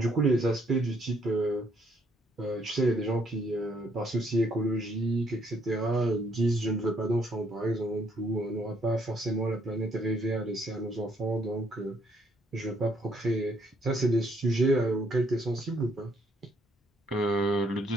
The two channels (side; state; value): both; normal; correlation 0.69